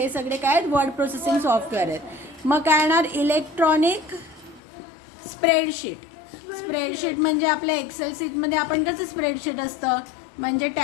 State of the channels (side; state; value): right; drops out; at 4.6 s